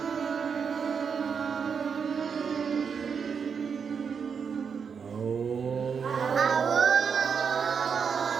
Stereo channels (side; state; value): left; quieter; 6.4 dB